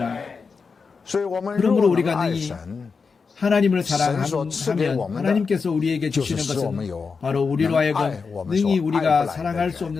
所以，我们 그러므로 若 우리가 能爱 능히 神， 하나님을 神所赐给 사랑하면 我们的 하나님께서 우리에게 就 주시는 是使我们 것은 有 바로 우리로 能 하여금 爱我们 능히 所爱不 우리가 来的 사랑할 수 人，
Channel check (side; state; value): right; quieter; 5.1 dB